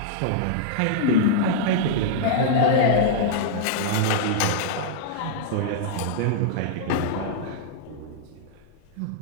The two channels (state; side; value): different; both; correlation -0.02